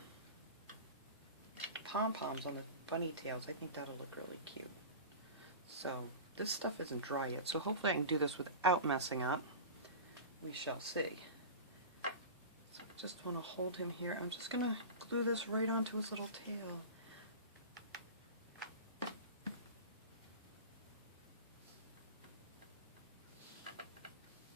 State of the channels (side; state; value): both; inverted; correlation -0.31